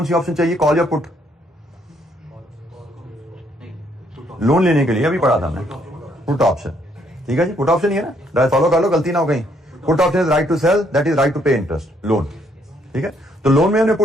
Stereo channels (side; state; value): both; normal; correlation 0.70